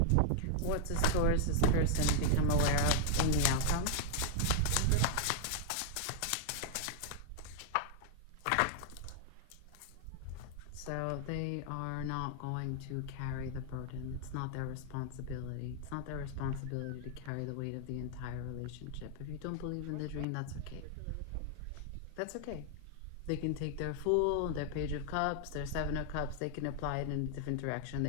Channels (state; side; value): different; both; correlation 0.00